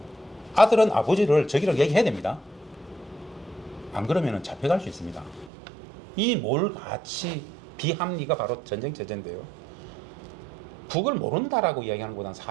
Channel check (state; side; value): drops out; left; at 5.5 s